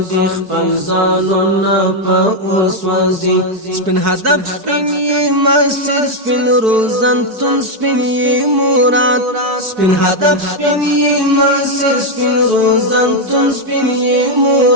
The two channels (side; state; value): left; late; 4.6 ms